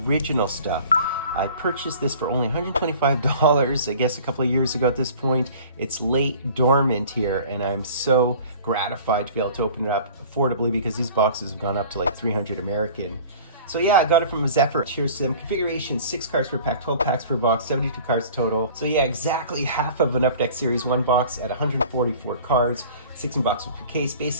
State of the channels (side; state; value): both; inverted; correlation -0.45